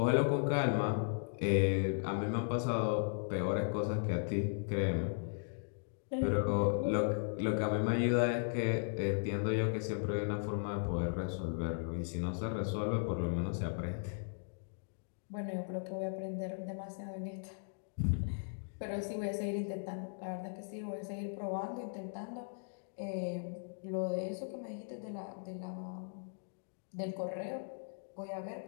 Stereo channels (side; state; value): right; silent; digital silence